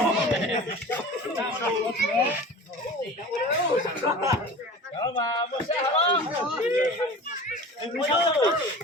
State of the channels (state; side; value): normal; both; correlation 0.37